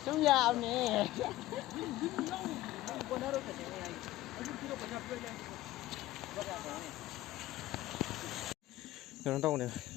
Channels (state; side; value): quieter; right; 16.0 dB